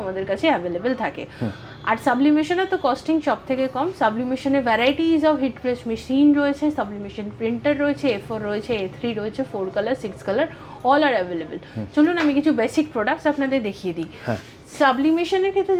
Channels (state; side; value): identical; both; correlation 1.00